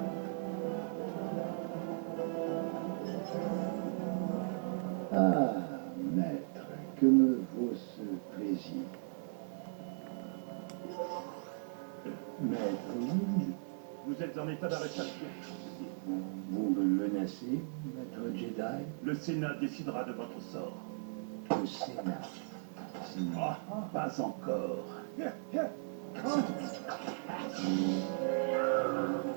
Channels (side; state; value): left; silent; 53 dB below the other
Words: Ah, maître, que me vaut ce plaisir? Maître, oui, Vous êtes en état d'arrestation. vous me menacez, maître Jedi? Le Sénat décidera de votre sort. Le Sénat. Ah, pas encore.